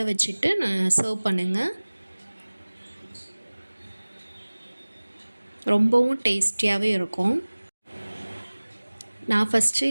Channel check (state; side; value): inverted; both; correlation -1.00